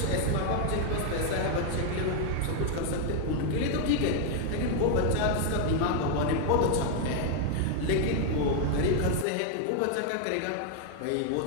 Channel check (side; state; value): both; different; correlation 0.00